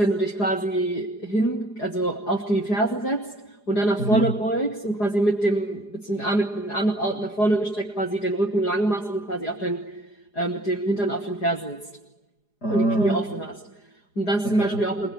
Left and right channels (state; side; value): late; right; 4.8 ms